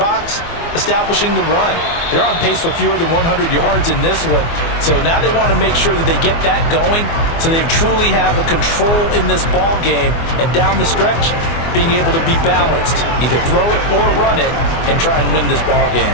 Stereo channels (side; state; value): right; late; 24 ms